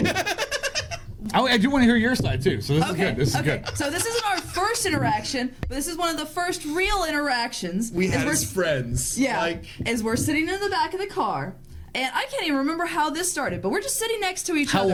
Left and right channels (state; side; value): identical; both; correlation 1.00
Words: I do want to hear your side, too. So this is good. This is good. So this isn't our first interaction, but this is one of the first real interactions. We had as friends. Yeah. As we're sitting in the back of the car. And I can't even remember how this started, but we're just sitting next to each other. How